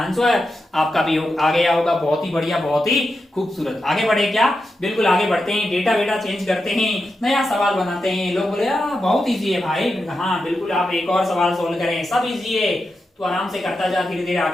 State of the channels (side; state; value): both; normal; correlation 0.88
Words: आपका भी आ गया होगा। बहुत ही बढ़िया, बहुत ही खूबसूरत। आगे बढ़े क्या, बिल्कुल आगे बढ़ते हैं। डेटा बेटा चेंज करते हैं, नया सवाल बनाते हैं। लोग बोले बहुत इजी है भाई, हाँ बिल्कुल, आप एक और सवाल सोल्व करें, सब इजी है। तो आराम से करता जा, धीरे धीरे